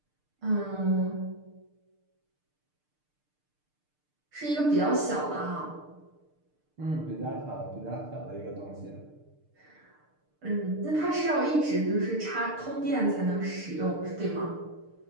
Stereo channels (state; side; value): late; left; 6.7 ms